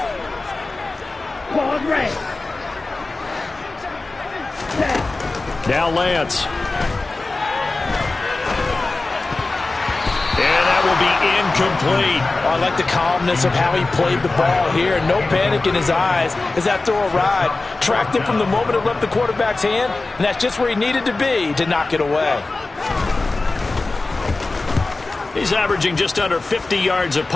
Now Lance. And that will be incomplete. Oh, I like the calmness of how he played the ball here. No panic in his eyes as that throw arrived. Tracked it from the moment it left the quarterback's hand, and that's just where he needed to be to knock it away. He's averaging just under 50 yards a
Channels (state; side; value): quieter; right; 3.4 dB